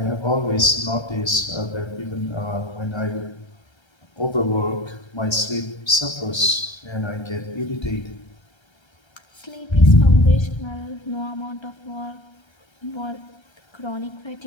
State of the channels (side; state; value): right; late; 1.3 ms